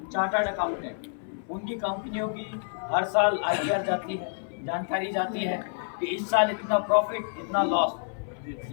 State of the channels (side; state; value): right; silent; 59 dB below the other